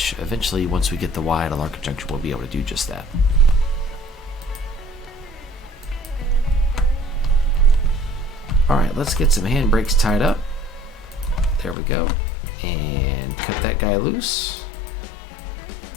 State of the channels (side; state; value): right; drops out; at 11.8 s